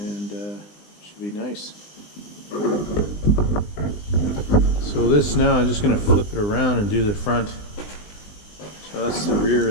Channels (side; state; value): right; late; 20 ms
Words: should be nice. So this now, I'm just going to flip it around and do the front. So that's the rear